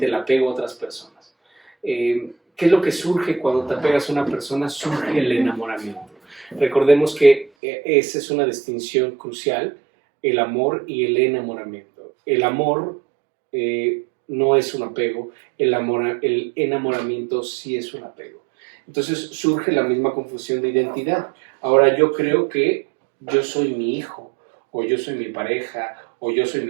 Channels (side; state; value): left; drops out; at 7.5 s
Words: el apego a otras personas. ¿Qué es lo que surge cuando te apegas a una persona? Surge el enamoramiento. Recordemos que esa es una distinción crucial, el amor y el enamoramiento. El amor no es un apego, el enamoramiento sí es un apego. Entonces surge la misma confusión de identidad. Ahora yo creo que yo soy mi hijo, o yo soy mi pareja, o yo soy